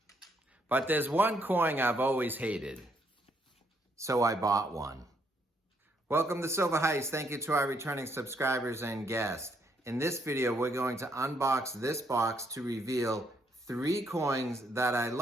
but there's one coin I've always hated, so I bought one. Welcome to Silver Heist. Thank you to our returning subscribers and guests. In this video, we're going to unbox this box to reveal 3 coins that I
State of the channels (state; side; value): normal; both; correlation 0.72